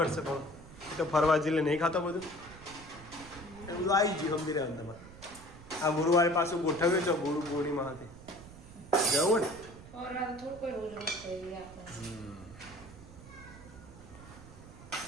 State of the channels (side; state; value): right; noise; rumble, 17 dB below the sound